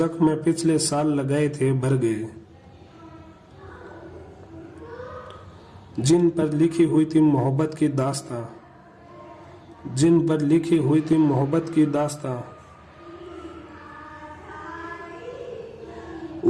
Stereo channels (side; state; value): both; identical; correlation 1.00